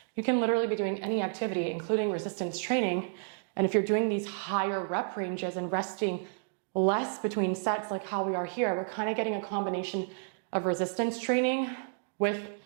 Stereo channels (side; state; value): left; silent; digital silence